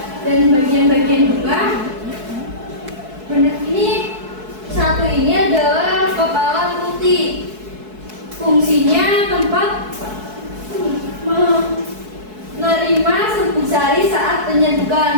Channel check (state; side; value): late; left; 4.6 ms